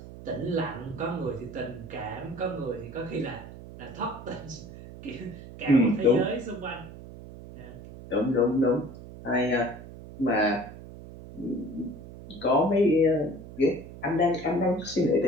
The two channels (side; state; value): right; noise; hum, 15 dB below the sound